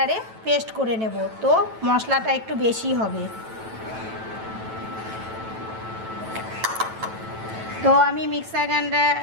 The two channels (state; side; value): late; left; 9.1 ms